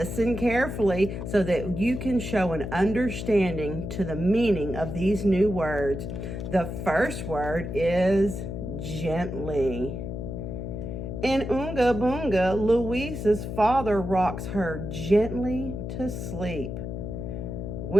carefully so that you can show an understanding to the meaning of these new words. The first word is gently. In Oonga Boonga, Louise's father rocks her gently to sleep.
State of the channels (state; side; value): noise; left; hum, 6 dB below the sound